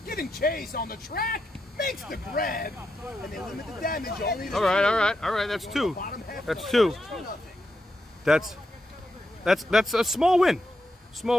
giving chase on the track, makes the grab, and they limit the damage only to All right. That's 2. bottom half. That's 2. That's a small win.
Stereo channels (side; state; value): both; normal; correlation 0.85